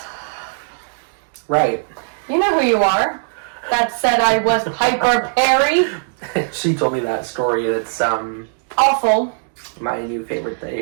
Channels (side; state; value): left; silent; digital silence